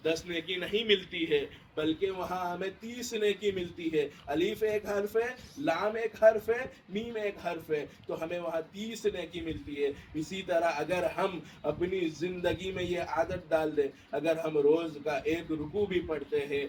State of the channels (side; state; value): both; identical; correlation 1.00